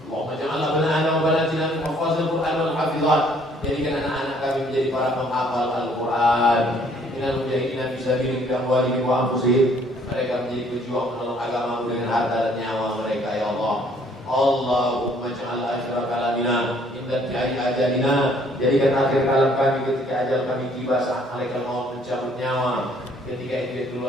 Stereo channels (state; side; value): normal; both; correlation 0.62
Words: Allahumma ja'alna banana wa banatina min hafazil Qur'an wal hafizat. Jadikan anak-anak kami menjadi para penghafal Al-Qur'an. Minal mujahidina fi sabilik bi amwalihim wa anfusihim. Mereka menjadi pejuang menolong agamamu dengan harta dan nyawa mereka ya Allah. Allahumma ja'al akhir kalamina inda tiari ajalina. Jadikan akhir kalam kami ketika ajal kami tiba, saat malaikat maut mencabut nyawa. Ketika itu